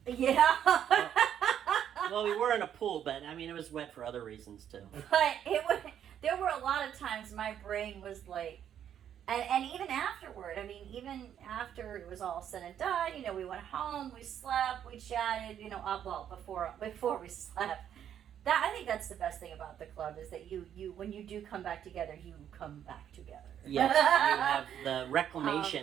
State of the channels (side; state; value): left; quieter; 9.6 dB